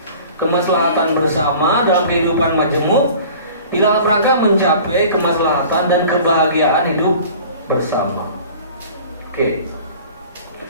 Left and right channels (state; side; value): inverted; both; correlation -0.45